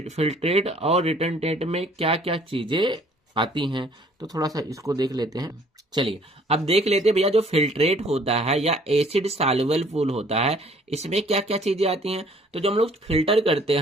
फिल्ट्रेट और रिटेंटेट में क्या क्या चीजें आती हैं, तो थोड़ा सा इसको देख लेते हैं। चलिए अब देख लेते हैं भैया जो फिल्ट्रेट होता है या एसिड सॉल्युबल पूल होता है इसमें क्या क्या चीजें आती हैं। तो जब हम लोग फिल्टर करते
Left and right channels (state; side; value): normal; both; correlation 0.57